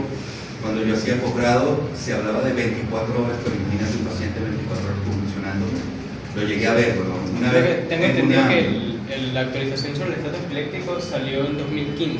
Cuando yo hacía posgrado se hablaba de 24 horas, pero imagínate un paciente 24 horas convulsionando. Lo llegué a ver, bueno, una vez. Tengo entendido que la actualización sobre el estatus epiléptico salió en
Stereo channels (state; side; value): identical; both; correlation 1.00